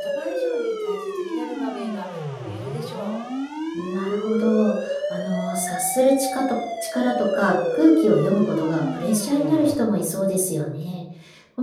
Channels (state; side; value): identical; both; correlation 1.00